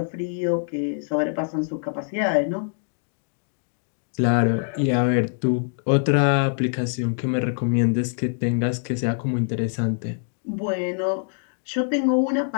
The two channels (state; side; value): silent; right; digital silence